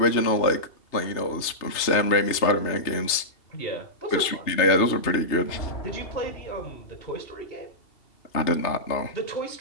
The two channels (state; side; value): late; right; 3.2 ms